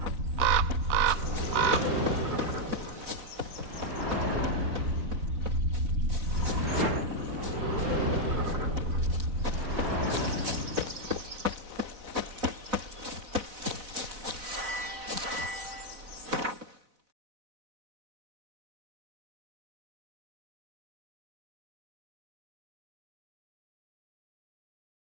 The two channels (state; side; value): late; left; 4.0 ms